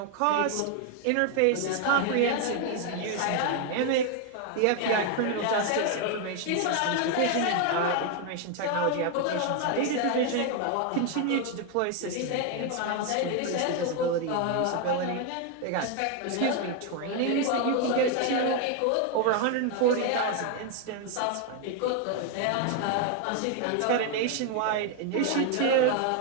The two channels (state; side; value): different; both; correlation 0.01